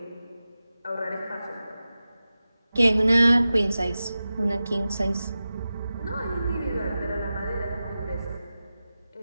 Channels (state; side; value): inverted; both; correlation -0.94